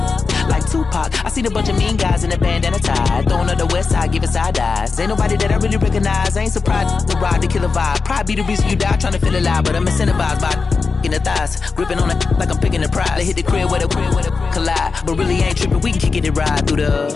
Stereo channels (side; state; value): right; quieter; 4.6 dB